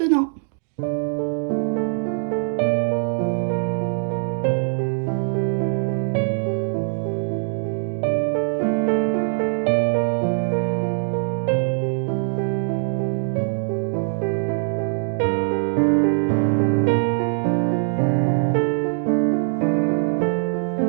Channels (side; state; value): left; silent; digital silence